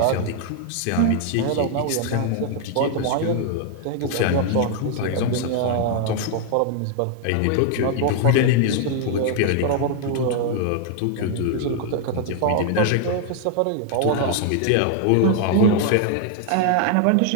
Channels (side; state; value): both; different; correlation 0.00